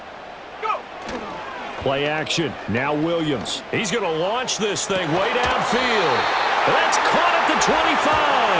Play action. Now Williams. He's going to launch this thing way downfield. That's caught at the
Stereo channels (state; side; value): identical; both; correlation 1.00